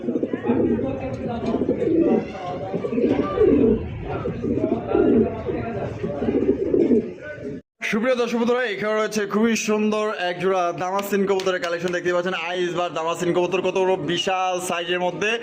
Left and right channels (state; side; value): identical; both; correlation 1.00